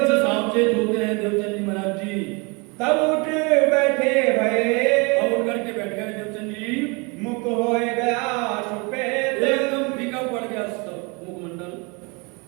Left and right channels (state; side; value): quieter; left; 29.6 dB